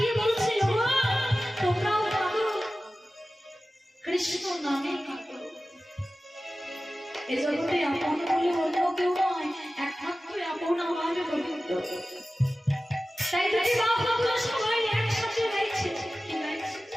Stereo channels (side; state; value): both; normal; correlation 0.95